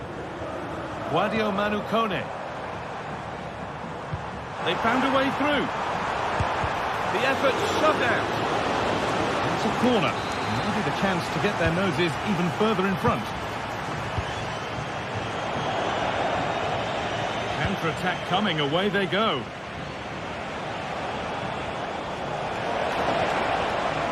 Guadio Manu Kone. They found a way through. The effort shut out. It's a corner. Maybe the chance to get their noses even further in front. Counter-attack coming, away they go.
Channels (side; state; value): both; identical; correlation 1.00